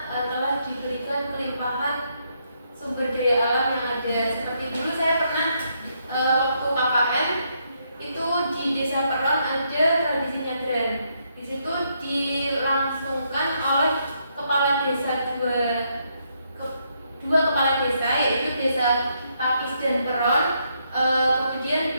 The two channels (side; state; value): both; inverted; correlation -0.76